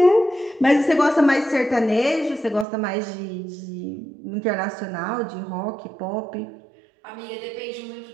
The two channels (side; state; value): left; drops out; at 2.7 s